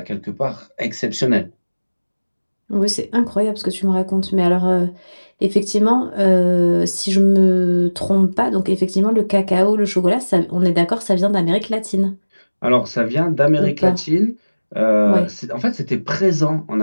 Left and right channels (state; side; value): inverted; both; correlation -1.00